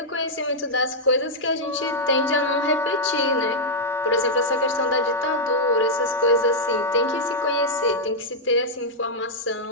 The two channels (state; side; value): normal; both; correlation -0.05